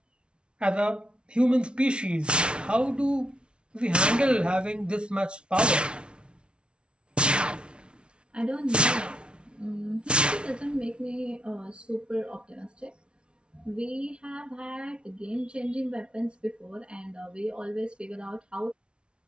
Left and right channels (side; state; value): left; late; 0.057 ms